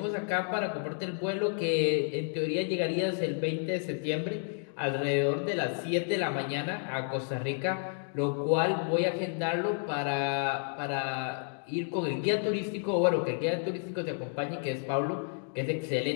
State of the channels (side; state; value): right; silent; 56 dB below the other